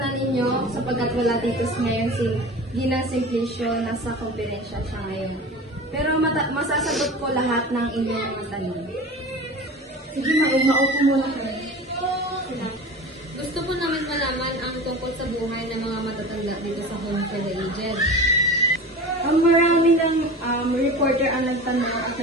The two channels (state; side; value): normal; both; correlation 0.34